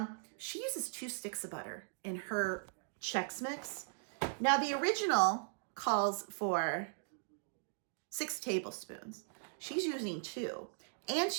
She uses 2 sticks of butter in her Chex Mix. Now, the original calls for 6 tablespoons. She's using 2. And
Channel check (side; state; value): left; silent; digital silence